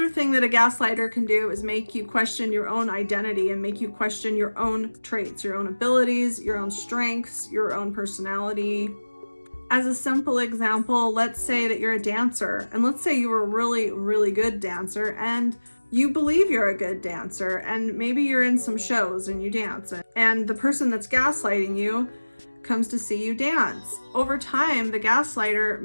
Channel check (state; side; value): inverted; both; correlation -1.00